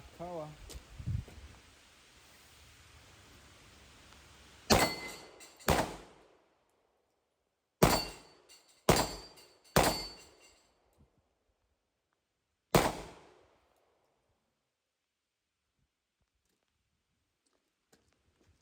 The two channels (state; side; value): identical; both; correlation 1.00